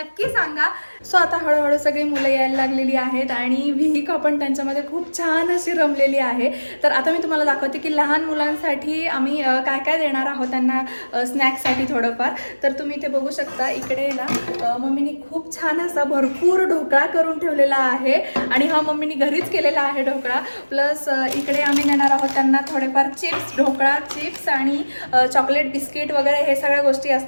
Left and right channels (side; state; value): both; inverted; correlation -1.00